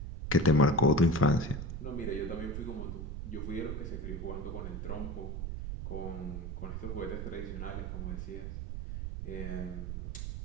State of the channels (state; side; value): noise; right; rumble, 5 dB below the sound